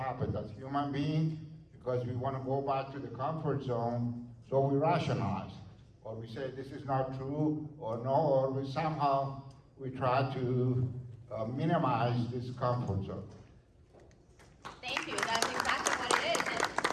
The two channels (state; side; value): identical; both; correlation 1.00